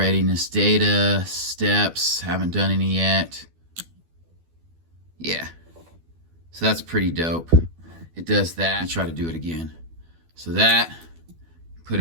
data, steps, haven't done any yet. Yeah, so that's pretty dope. It does that. I'll try to do it again. So that, put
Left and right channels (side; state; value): left; late; 12 ms